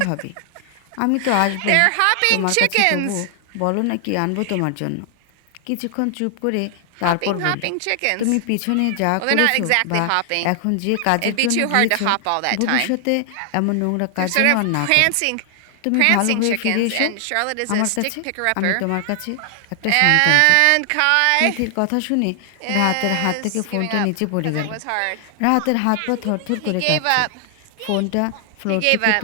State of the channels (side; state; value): both; different; correlation 0.00